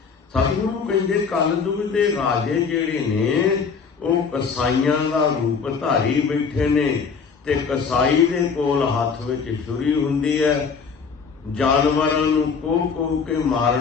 ਸਤਿਗੁਰੂ ਕਹਿੰਦੇ, ਕਲਯੁਗ ਦੇ ਰਾਜੇ ਜਿਹੜੇ ਨੇ ਉਹ ਕਸਾਈਆਂ ਦਾ ਰੂਪ ਧਾਰੀ ਬੈਠੇ ਨੇ, ਤੇ ਕਸਾਈ ਦੇ ਕੋਲ ਹੱਥ ਵਿੱਚ ਛੁਰੀ ਹੁੰਦੀ ਹੈ, ਜਾਨਵਰਾਂ ਨੂੰ ਕੋਹ ਕੇ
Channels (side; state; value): right; quieter; 5.6 dB